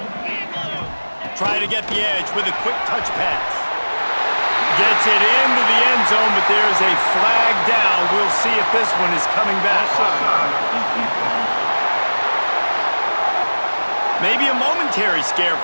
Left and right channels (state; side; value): inverted; both; correlation -1.00